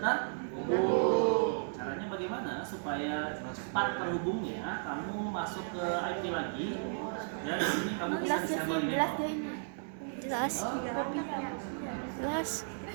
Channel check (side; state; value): left; silent; digital silence